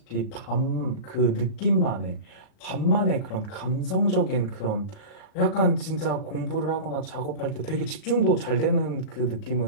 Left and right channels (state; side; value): late; right; 37 ms